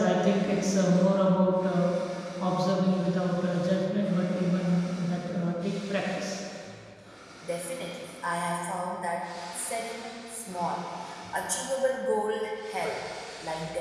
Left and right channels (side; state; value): both; identical; correlation 1.00